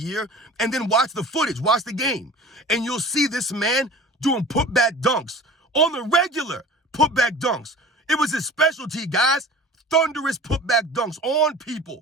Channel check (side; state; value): both; normal; correlation 0.41